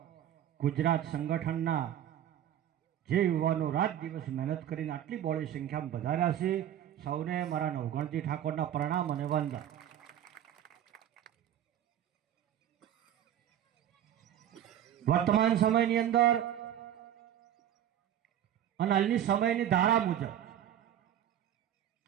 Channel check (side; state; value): left; quieter; 10.7 dB